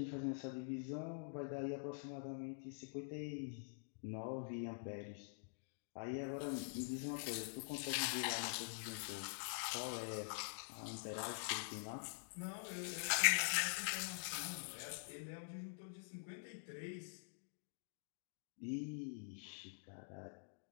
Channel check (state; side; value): silent; right; digital silence